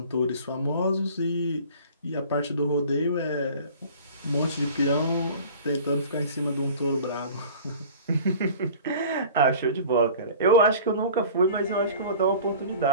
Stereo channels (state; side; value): inverted; both; correlation -0.43